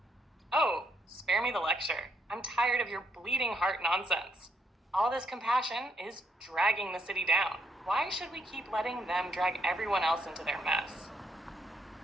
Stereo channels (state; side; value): normal; both; correlation 0.74